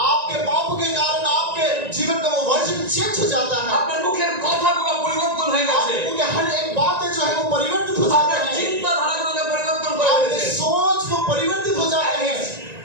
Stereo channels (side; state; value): left; late; 1.9 ms